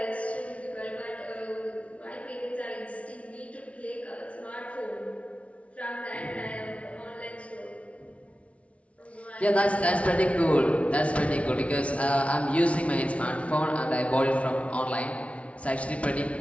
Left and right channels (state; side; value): late; right; 0.063 ms